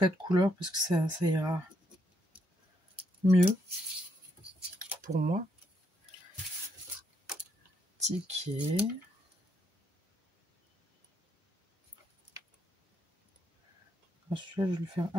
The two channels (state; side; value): normal; both; correlation 0.75